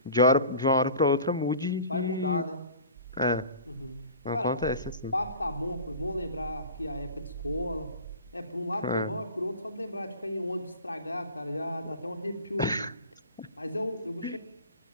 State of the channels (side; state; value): both; inverted; correlation -0.39